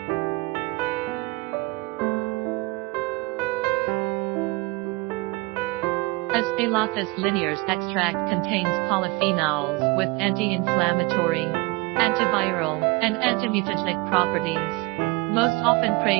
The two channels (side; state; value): left; quieter; 24.7 dB